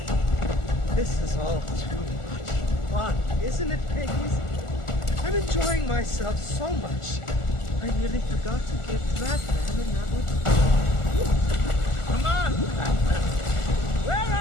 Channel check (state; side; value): late; right; 1.4 ms